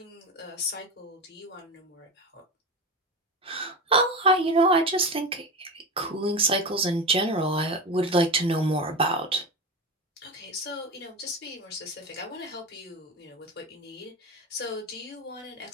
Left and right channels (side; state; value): both; normal; correlation 0.22